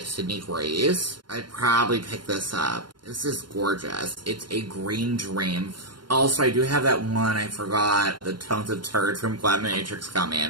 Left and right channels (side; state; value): left; late; 0.71 ms